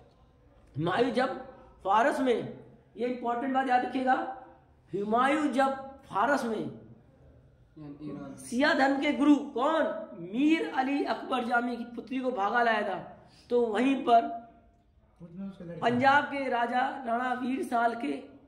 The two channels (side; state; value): both; identical; correlation 1.00